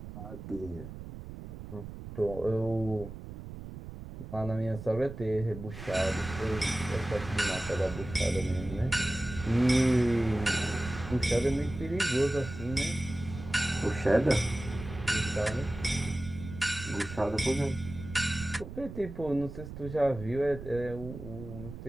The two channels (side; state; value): right; noise; rumble, 11 dB below the sound